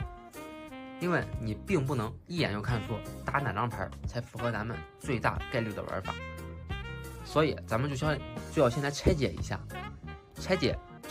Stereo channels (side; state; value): both; identical; correlation 1.00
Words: 因为你并不能一眼就看出打哪张牌才符合咱们最大概率的玩法，所以咱们就要先来拆解一下。拆解